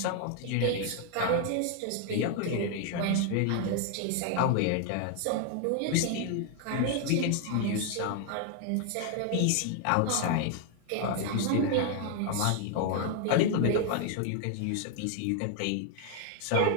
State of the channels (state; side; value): different; both; correlation 0.00